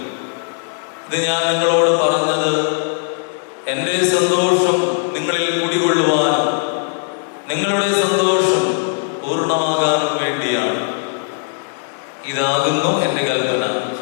ഇത് ഞാൻ നിങ്ങളോട് പറഞ്ഞത് എൻ്റെ സന്തോഷം നിങ്ങളിൽ കുടികൊള്ളുവാനും നിങ്ങളുടെ സന്തോഷം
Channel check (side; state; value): right; silent; 67 dB below the other